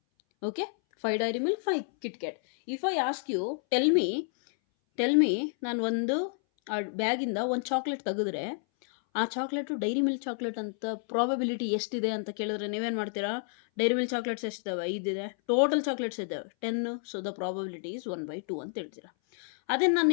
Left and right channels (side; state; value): right; silent; 58 dB below the other